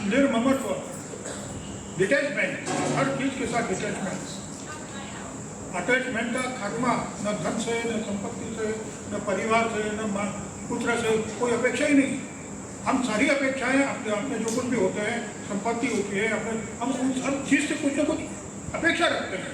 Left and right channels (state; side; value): identical; both; correlation 1.00